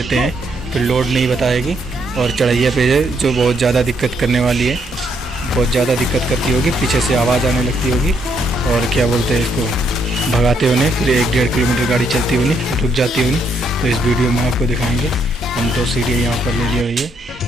हैं, फिर लोड नहीं बताएगी और चढ़ाइया पे है जो बहुत ज़्यादा दिक्कत करने वाली है, बहुत ज़्यादा दिक्कत करती होगी, पीछे से आवाज़ आने लगती होगी और क्या बोलते हैं इसको, भगाते होने, फिर 1-1.5 किलोमीटर गाड़ी चलती होनी, रुक जाती होनी। तो इस वीडियो में आपको दिखाएंगे। हम तो CDI यहाँ पर ले ली हुई है।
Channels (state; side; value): normal; both; correlation 0.73